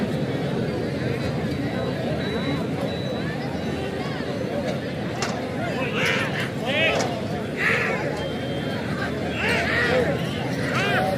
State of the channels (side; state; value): both; identical; correlation 1.00